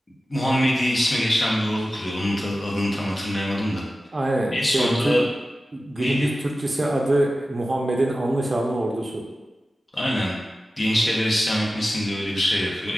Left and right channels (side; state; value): both; normal; correlation 0.95